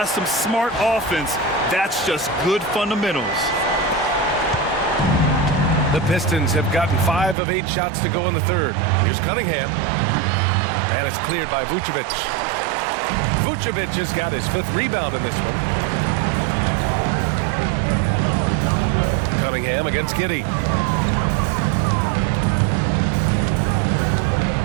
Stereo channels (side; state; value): left; drops out; at 7.4 s